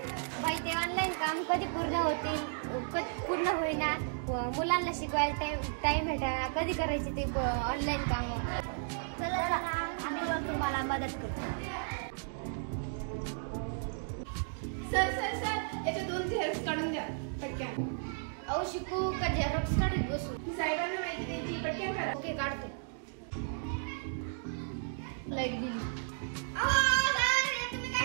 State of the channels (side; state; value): left; silent; digital silence